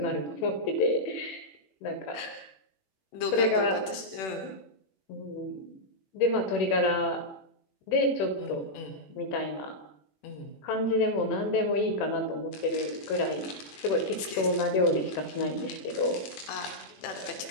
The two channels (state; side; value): late; right; 21 ms